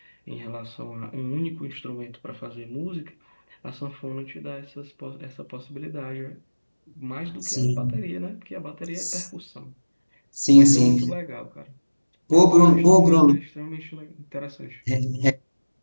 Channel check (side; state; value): both; inverted; correlation -1.00